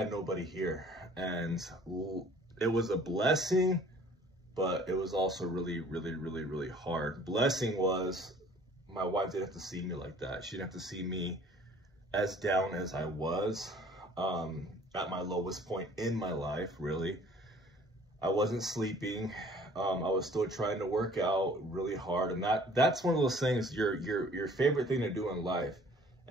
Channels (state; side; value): normal; both; correlation 0.53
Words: nobody here. And it was a blessing, but it was also really, really, really, really hard. Blessing was my wife didn't have to see me like that. She didn't have to see me as down as I was at my lowest point in my life, really. I wasn't sleeping. I was still trying to work out really hard, and that's one of those things, your favorite thing to do in life,